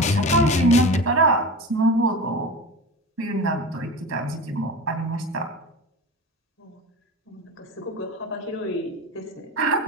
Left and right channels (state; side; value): normal; both; correlation 0.30